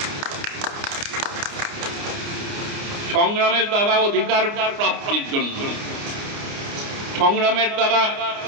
সংগ্রামের দ্বারা অধিকার প্রাপ্তির জন্য, সংগ্রামের দ্বারা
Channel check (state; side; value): late; left; 29 ms